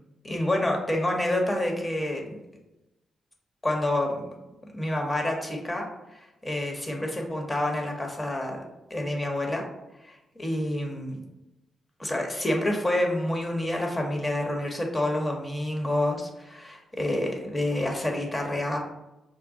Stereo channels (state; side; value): normal; both; correlation 0.90